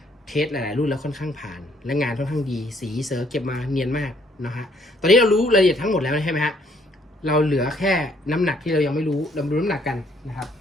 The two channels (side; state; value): both; normal; correlation 0.66